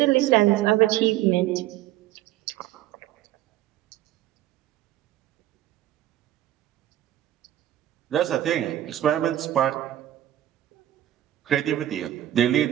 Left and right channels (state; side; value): quieter; left; 13.4 dB